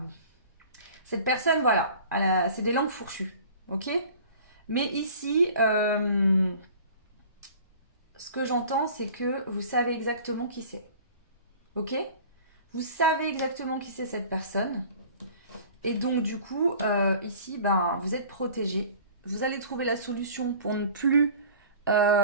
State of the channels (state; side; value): inverted; both; correlation -0.44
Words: cette personne, voilà, c'est des langues fourchues, ok? Mais ici, ce que j'entends, c'est que vous savez exactement qui c'est, ok? Vous savez exactement qui c'est cette personne. Et donc, du coup, ici, ben, vous êtes protégé. Vous allez trouver la solution pour ne plus